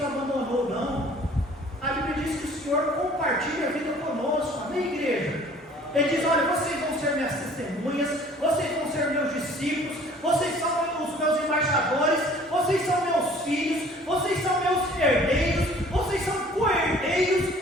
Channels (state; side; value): normal; both; correlation 0.52